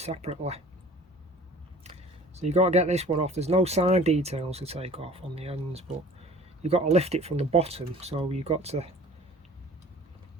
So you've got to get this one off. There's no side details to take off on the ends, but you've got to lift it from the bottom. So you've got to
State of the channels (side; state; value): both; normal; correlation 0.46